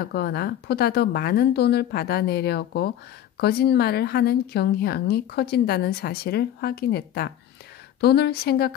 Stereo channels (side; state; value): right; quieter; 11.2 dB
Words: 보다 더 많은 돈을 받아내려고 거짓말을 하는 경향이 커진다는 사실을 확인했다. 돈을